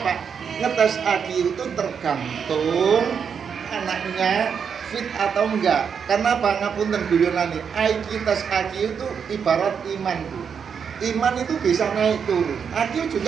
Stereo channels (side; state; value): left; quieter; 6.8 dB